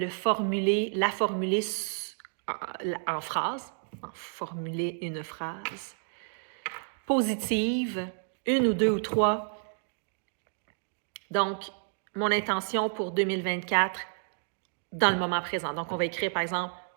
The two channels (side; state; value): left; silent; digital silence